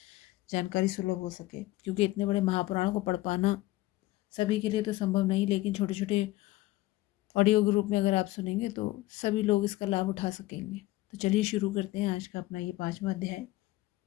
जानकारी सुलभ हो सके। क्योंकि इतने बड़े महापुराण को पढ़ पाना सभी के लिए तो संभव नहीं, लेकिन छोटे छोटे ऑडियो ग्रुप में अगर आप सुनेंगे तो सभी लोग इसका लाभ उठा सकेंगे। तो चलिए शुरू करते हैं आज का अपना ये 5वां अध्याय।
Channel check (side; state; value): right; quieter; 18.0 dB